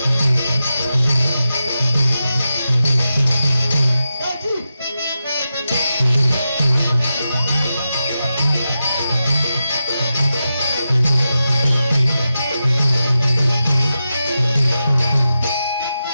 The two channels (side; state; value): both; inverted; correlation -0.90